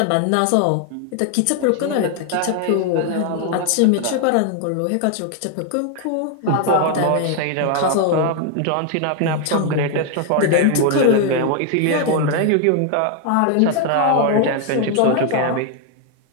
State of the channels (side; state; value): both; different; correlation 0.00